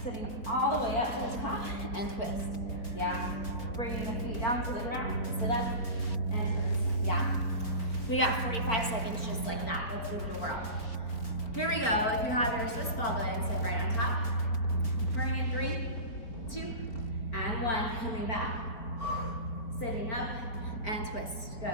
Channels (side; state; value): right; late; 4.2 ms